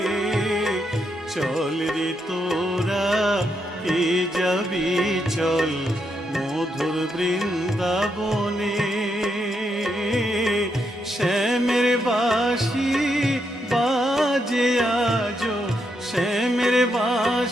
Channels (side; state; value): both; normal; correlation 0.80